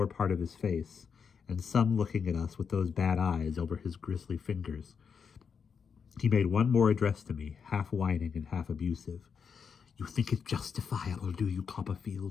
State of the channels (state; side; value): quieter; right; 6.3 dB